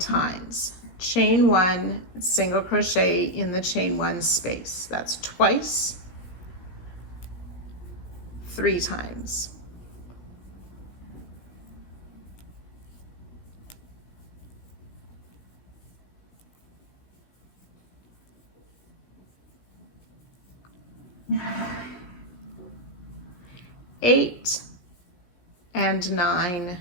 Chain 1, single crochet in the chain 1 space. That's twice, 3 times. Eight and 9,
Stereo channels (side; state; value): right; late; 16 ms